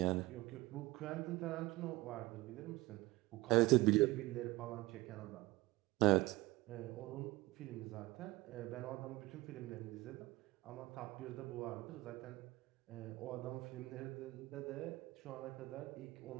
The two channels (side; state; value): left; quieter; 20.1 dB